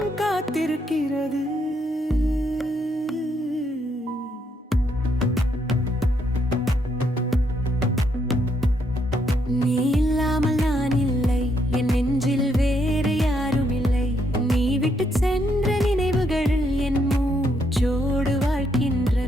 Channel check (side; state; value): both; normal; correlation 0.75